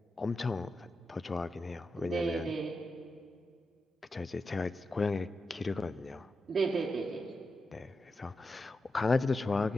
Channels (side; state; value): both; normal; correlation 0.89